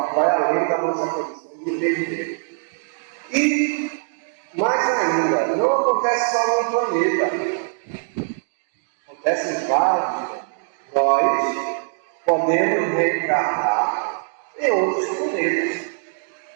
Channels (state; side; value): silent; left; digital silence